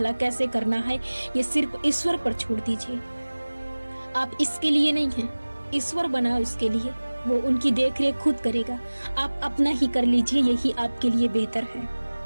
कैसे करना है, ये सिर्फ ईश्वर पर छोड़ दीजिए। आप इसके लिए नहीं हैं, ईश्वर बना उसके लिए, वो उनकी देखरेख खुद करेगा। आप अपना ही कर लीजिए, यही आपके लिए बेहतर है।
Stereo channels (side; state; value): both; inverted; correlation -1.00